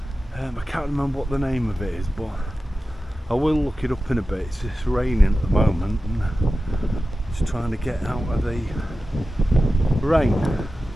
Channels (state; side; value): normal; both; correlation 0.94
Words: I can't remember what the name of it is, but I will look it up in a bit. It's just raining at the moment and just trying to get out of the rain,